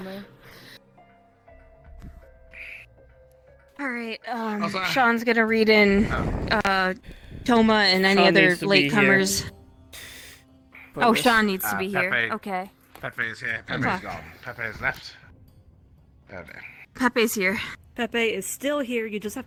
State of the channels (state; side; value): identical; both; correlation 1.00